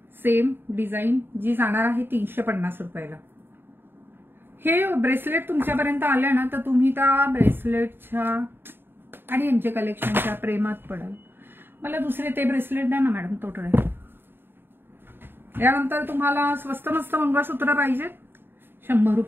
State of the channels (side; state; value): left; late; 0.10 ms